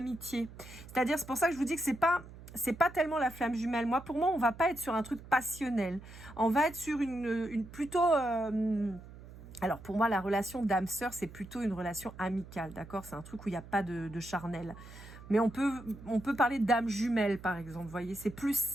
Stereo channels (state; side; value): noise; right; hum, 16 dB below the sound